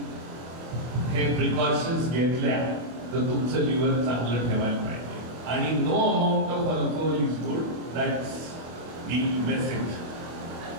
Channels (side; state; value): left; late; 25 ms